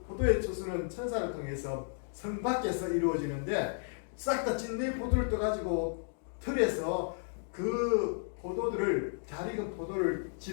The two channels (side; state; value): right; silent; digital silence